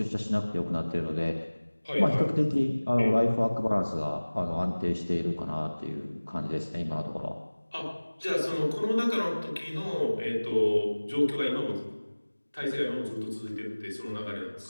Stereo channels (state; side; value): inverted; both; correlation -1.00